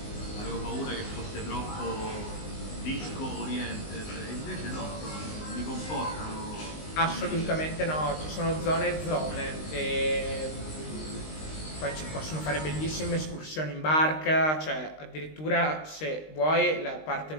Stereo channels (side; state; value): right; late; 19 ms